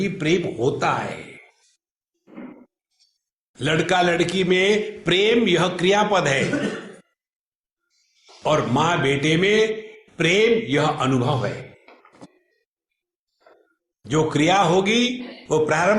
प्रेम होता है। लड़का लड़की में प्रेम यह क्रियापद है, और मां बेटे में प्रेम यह अनुभव है। जो क्रिया होगी वो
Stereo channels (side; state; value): both; identical; correlation 1.00